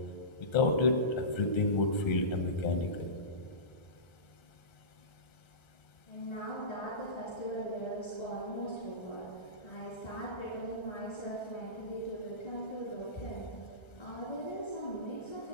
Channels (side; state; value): right; late; 1.3 ms